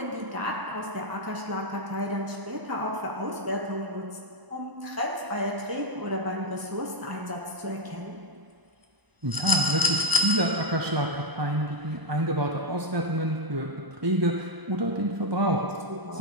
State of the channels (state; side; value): late; left; 1.0 ms